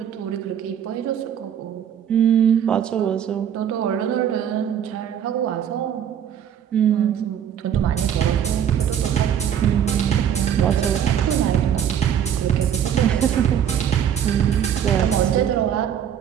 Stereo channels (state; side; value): quieter; left; 9.1 dB